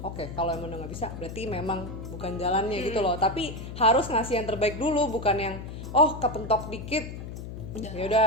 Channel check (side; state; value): left; noise; hum, 9 dB below the sound